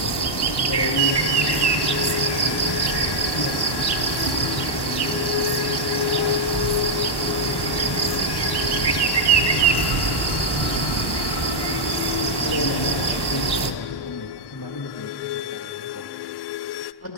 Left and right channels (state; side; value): late; right; 1.1 ms